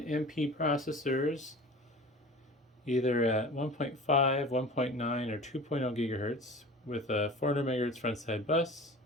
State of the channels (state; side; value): normal; both; correlation 0.38